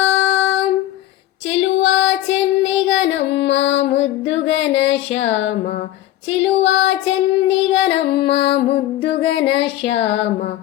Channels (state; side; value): quieter; right; 14.2 dB